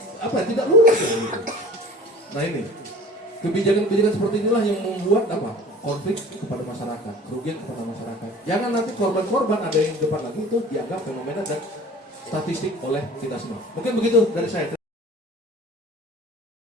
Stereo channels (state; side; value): normal; both; correlation 0.43